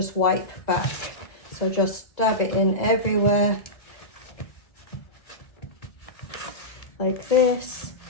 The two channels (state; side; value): late; right; 2.0 ms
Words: wipe back. So just dab it in everywhere like this.